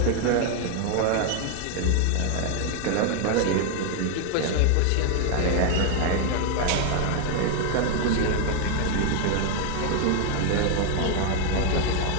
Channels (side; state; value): both; different; correlation 0.00